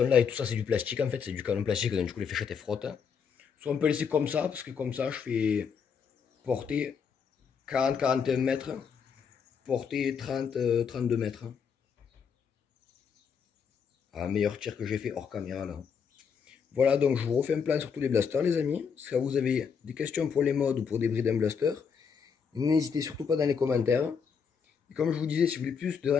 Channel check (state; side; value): quieter; right; 6.5 dB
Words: là et tout ça c'est du plastique en fait, c'est du canon plastique, donc du coup les fléchettes elles frottent. Soit on peut laisser comme ça, parce que comme ça je fais portée 40-41 mètres, portée 30-32 mètres. Un meilleur tir que j'ai fait hors caméra là. Voilà, donc je vous refais un plan sur tous les blasters les amis. Si vous avez des questions pour les modes ou pour des brides en blaster, n'hésitez surtout pas dans les commentaires. Et comme je vous disais, si vous voulez plus de